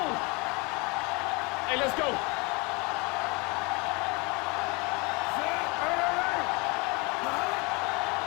Hey, let's go.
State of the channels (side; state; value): right; quieter; 28.0 dB